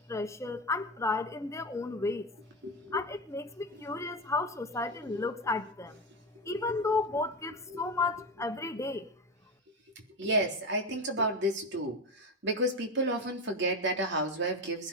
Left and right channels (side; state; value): both; normal; correlation 0.17